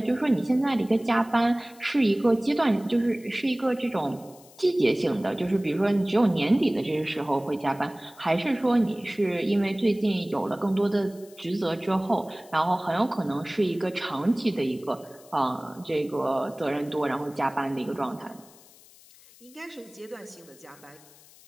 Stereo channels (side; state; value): left; noise; hiss, 24 dB below the sound